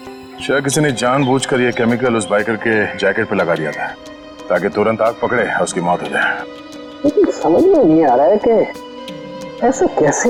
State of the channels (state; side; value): identical; both; correlation 1.00